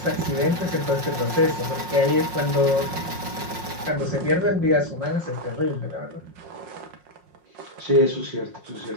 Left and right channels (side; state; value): left; late; 5.5 ms